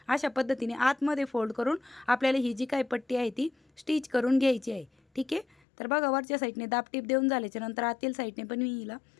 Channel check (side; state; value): right; drops out; at 5.6 s